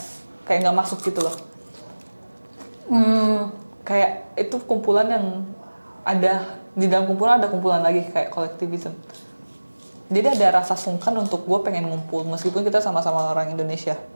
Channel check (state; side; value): inverted; both; correlation -1.00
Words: Kayak nggak masuk gitu loh. Kayak itu kumpulan yang ada, di dalam kumpulan ada kumpulan lagi kayak kolektivisme. Jadi ada rasa sungkan untuk gue pengen ngumpul meskipun kita sama-sama orang Indonesia.